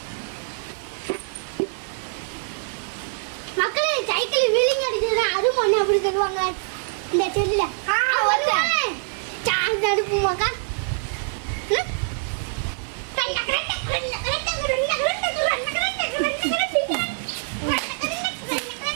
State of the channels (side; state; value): left; silent; digital silence